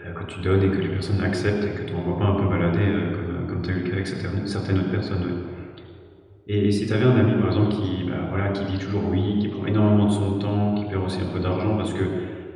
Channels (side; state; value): both; identical; correlation 1.00